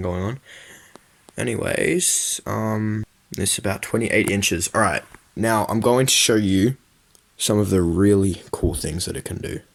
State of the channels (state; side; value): identical; both; correlation 1.00